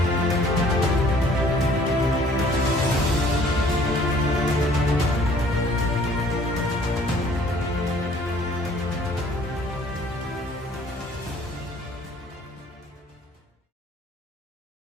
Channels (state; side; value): normal; both; correlation 0.57